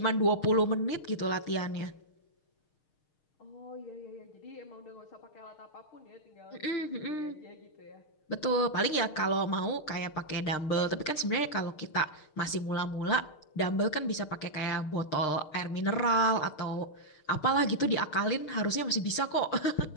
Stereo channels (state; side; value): late; right; 6.5 ms